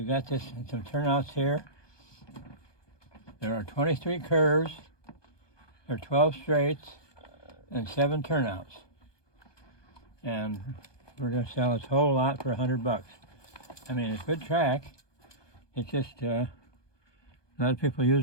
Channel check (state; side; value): late; right; 1.2 ms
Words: got this and some turnouts here. There are 23 curves, there are 12 straights, and 7 turnouts. And we're going to sell this whole lot for $100. I mean, it's good track. It's just a lot of people